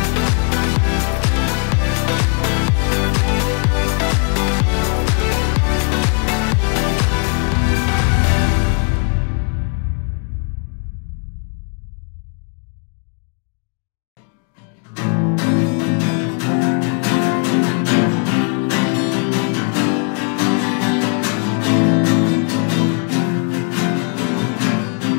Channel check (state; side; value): quieter; right; 39.5 dB